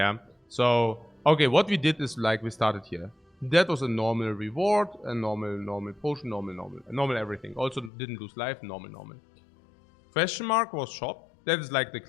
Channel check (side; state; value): right; drops out; at 7.9 s